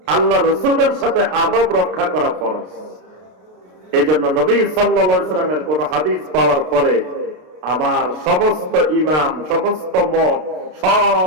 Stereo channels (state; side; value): late; left; 32 ms